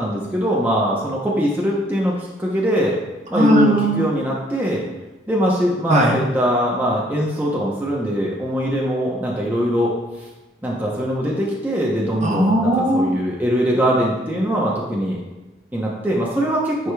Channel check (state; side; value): normal; both; correlation 0.65